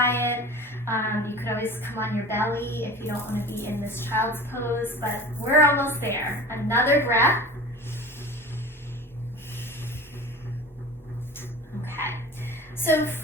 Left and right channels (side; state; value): both; normal; correlation 0.37